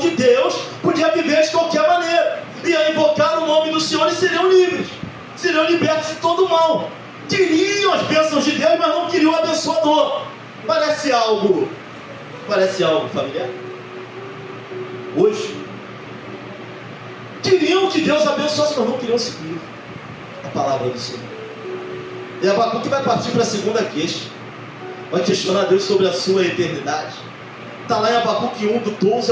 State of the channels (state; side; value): identical; both; correlation 1.00